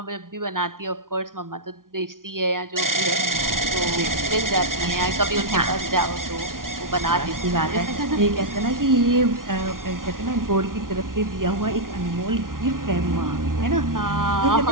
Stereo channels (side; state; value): left; late; 0.90 ms